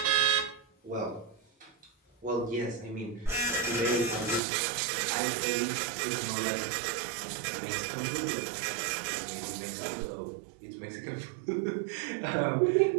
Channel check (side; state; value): left; drops out; at 4.4 s